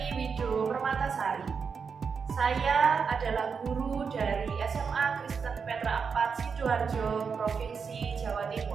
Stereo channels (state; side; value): quieter; left; 5.8 dB